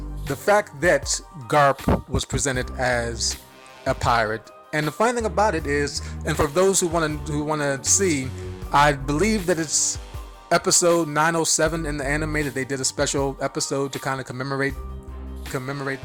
the fact that Garp was presented as a pirate, and the funny thing about it is, and for those who want to see, I believe that it's episode 907 in the anime that they did a special episode to kind of commemorate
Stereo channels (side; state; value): both; identical; correlation 1.00